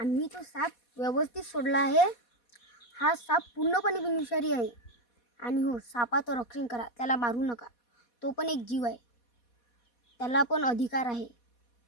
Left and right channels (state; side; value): late; right; 4.2 ms